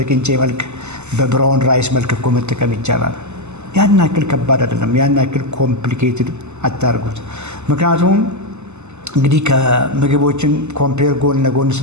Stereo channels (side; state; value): left; late; 0.83 ms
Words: መልክ በብራውን ራይስ መልክ እኮ መጠቀም ይቻላል። ያን ያክል ከባድ አይደለም። ያን ያክል ኮምፕሊኬትድ አታርጉት። ምክንያቱም እንግዲህ ከምግቦችን ኮምፔር ጎን ለጎን